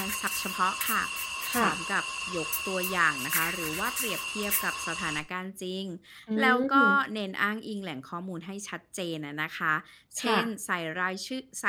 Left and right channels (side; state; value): both; identical; correlation 1.00